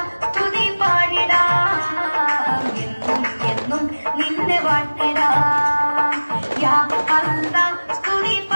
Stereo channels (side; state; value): both; inverted; correlation -1.00